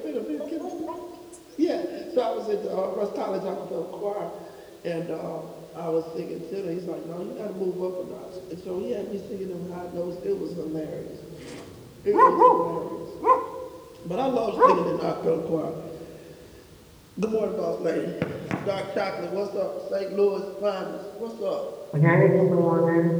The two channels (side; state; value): both; identical; correlation 1.00